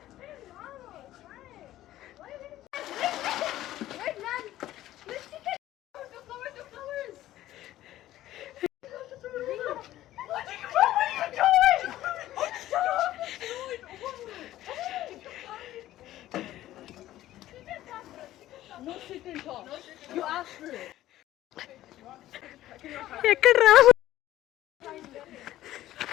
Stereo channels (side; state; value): right; quieter; 14.3 dB